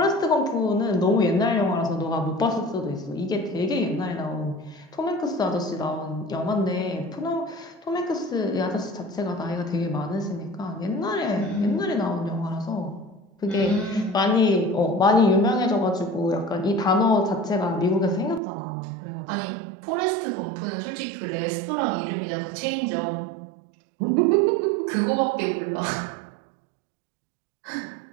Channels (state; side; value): drops out; left; at 18.4 s